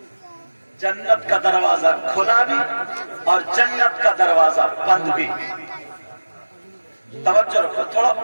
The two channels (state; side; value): inverted; both; correlation -1.00